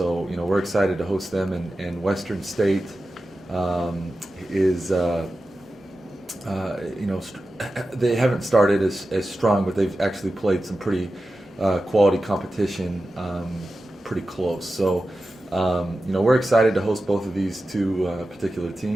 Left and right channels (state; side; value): normal; both; correlation 0.93